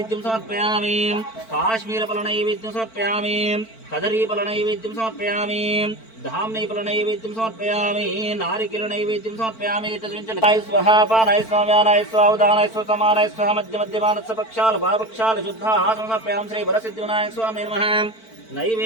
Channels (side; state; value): right; late; 4.5 ms